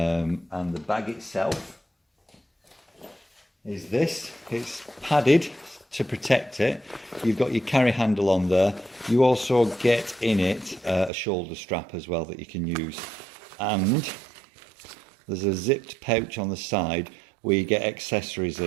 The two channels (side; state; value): left; drops out; at 11.1 s